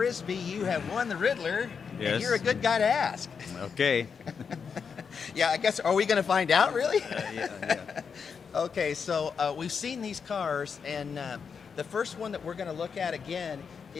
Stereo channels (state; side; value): quieter; right; 6.1 dB